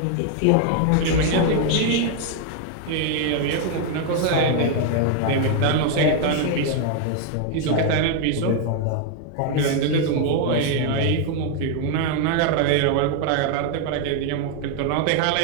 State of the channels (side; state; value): both; different; correlation 0.00